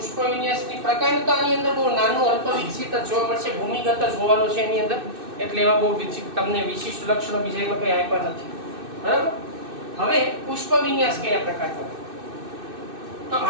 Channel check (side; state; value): left; late; 2.6 ms